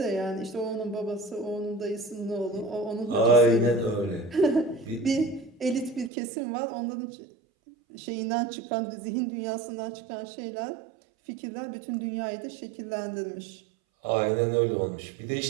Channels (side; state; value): left; drops out; at 6.1 s